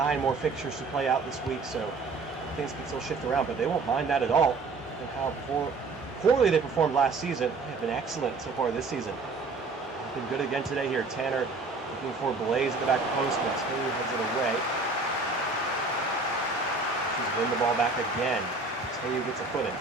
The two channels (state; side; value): quieter; left; 3.8 dB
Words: more fixtures to play out this week, so things can still shift around, but they won't mind that at all. And how poorly they performed last season. They have been excellent so far this season. Been good again today here. Tanner looking for Blaze at the back post, but Taylor heads it away. Win the ball back again. Taylor gets a foot in.